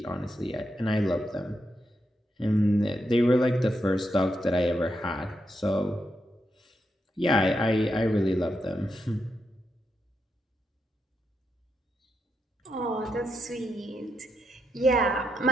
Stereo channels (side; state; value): both; normal; correlation 0.83